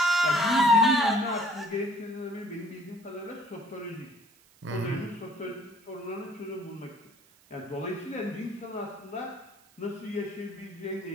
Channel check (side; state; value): right; noise; hiss, 29 dB below the sound